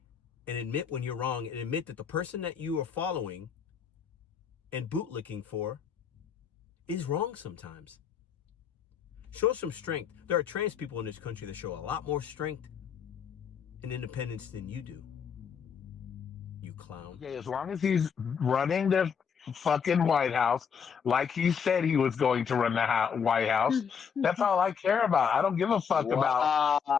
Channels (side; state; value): right; quieter; 6.9 dB